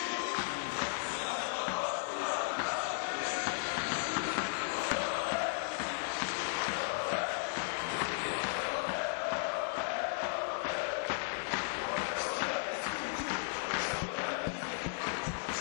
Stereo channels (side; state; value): right; silent; digital silence